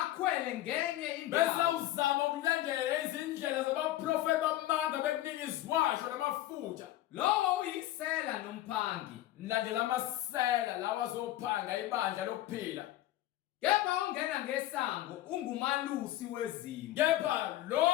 ngenye bese indawo uzama ukulandela izindlela zabaprofeti bamanga bekunika iziwasho namafutha lowo uyisela nomphangi landela amasela lawa azophanga ibandla lokuphila. kepha ongena ngesango ungumalusi wezimvu Kepha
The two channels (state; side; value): quieter; right; 14.6 dB